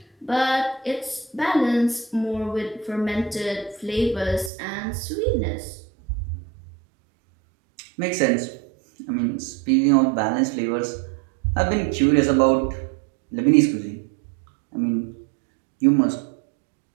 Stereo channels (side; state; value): left; drops out; at 4.5 s